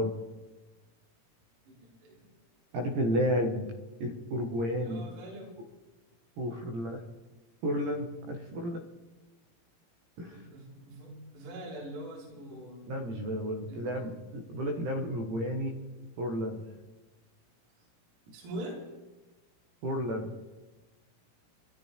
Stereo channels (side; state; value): left; late; 17 ms